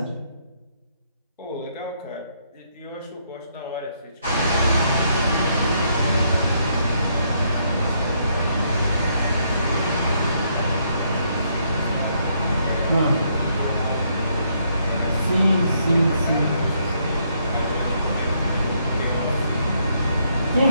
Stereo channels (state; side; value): inverted; both; correlation -0.73